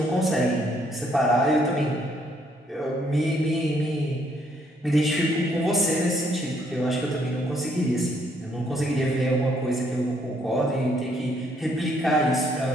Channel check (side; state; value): both; normal; correlation 0.69